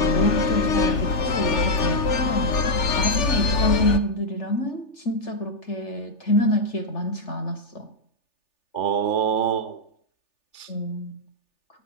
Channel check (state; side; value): late; right; 3.4 ms